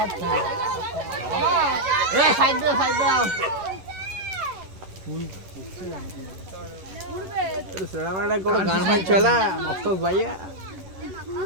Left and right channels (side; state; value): left; late; 11 ms